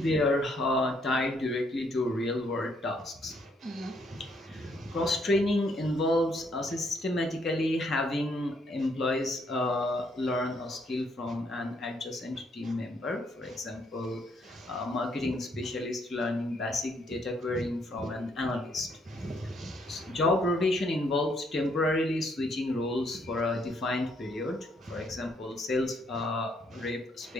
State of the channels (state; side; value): normal; both; correlation 0.70